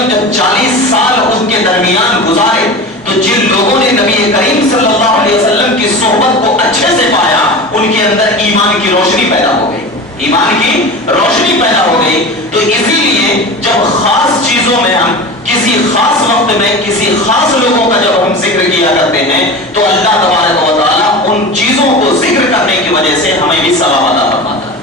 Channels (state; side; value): normal; both; correlation 0.30